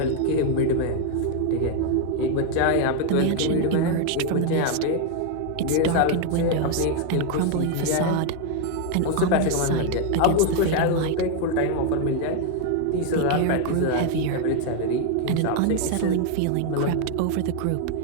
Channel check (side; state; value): both; different; correlation 0.01